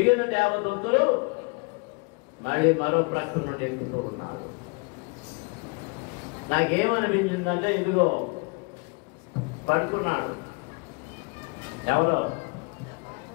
దేవదూతలు మళ్ళీ మరో ప్రక్క నుండి ఎక్కుతూ ఉన్నారు. నాకేమనిపించిందంటే, ఇదిగో పడుకున్నాడు, ఎవరో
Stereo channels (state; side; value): quieter; right; 30.7 dB